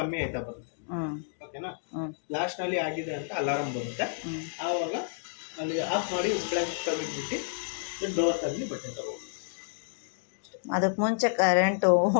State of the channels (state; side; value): silent; right; digital silence